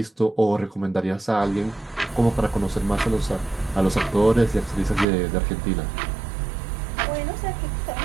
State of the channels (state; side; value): drops out; left; at 5.1 s